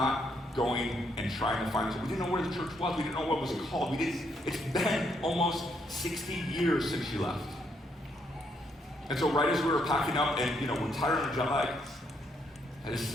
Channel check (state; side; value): normal; both; correlation 0.74